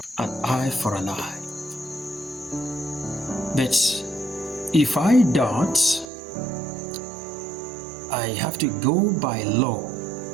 an eye for an eye. But if I don't, I have to go by law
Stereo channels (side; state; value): left; drops out; at 6.1 s